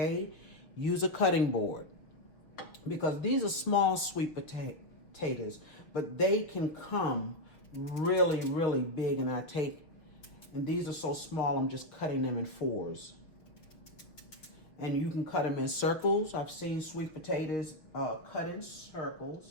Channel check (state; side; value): late; right; 6.2 ms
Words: Use a cutting board, because these are small sweet potatoes, but they can come really, really big, and these are so small, I'm just cutting them in fours. And you can cut them in circles. I've seen sweet potatoes cut in